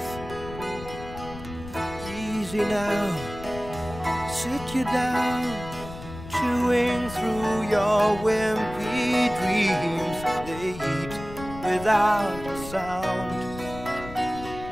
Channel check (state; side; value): noise; left; rumble, 13 dB below the sound